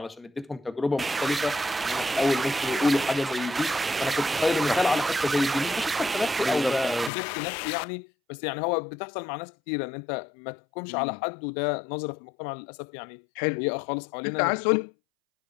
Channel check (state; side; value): drops out; right; at 7.1 s